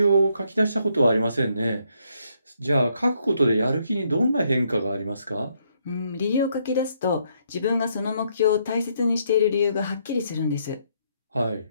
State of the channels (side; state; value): both; inverted; correlation -0.73